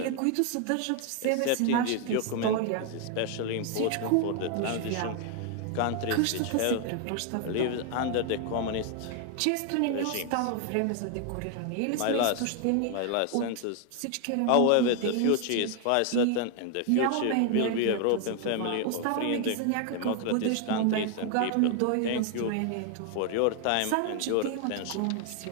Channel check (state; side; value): different; both; correlation 0.00